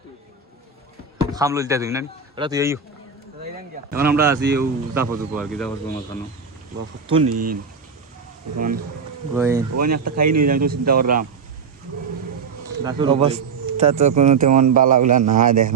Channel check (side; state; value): left; quieter; 5.5 dB